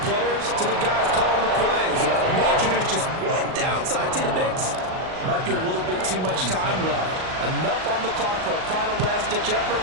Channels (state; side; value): late; left; 38 ms